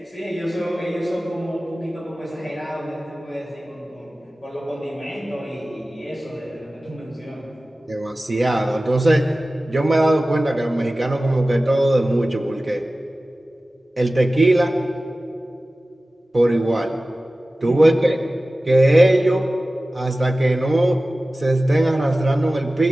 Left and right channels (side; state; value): both; normal; correlation 0.96